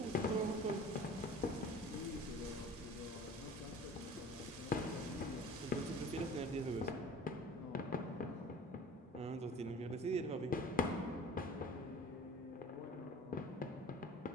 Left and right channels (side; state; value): both; normal; correlation 0.43